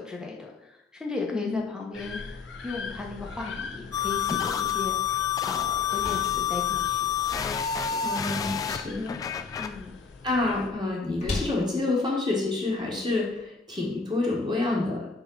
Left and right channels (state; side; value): quieter; right; 4.5 dB